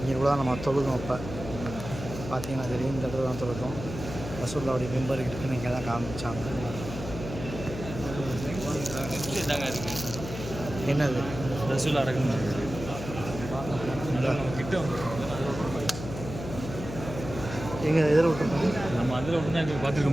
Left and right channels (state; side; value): noise; left; hum, 9 dB below the sound